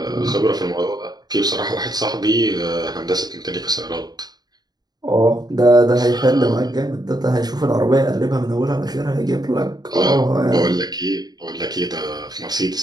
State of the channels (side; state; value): left; late; 0.19 ms